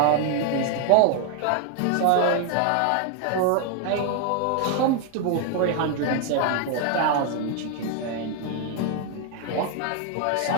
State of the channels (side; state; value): both; different; correlation 0.00